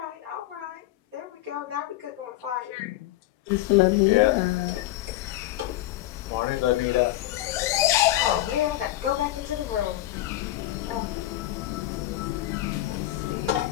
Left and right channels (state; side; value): quieter; right; 15.4 dB